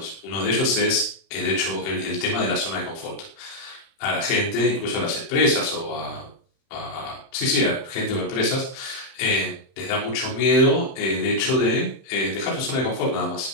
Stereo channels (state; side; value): late; right; 31 ms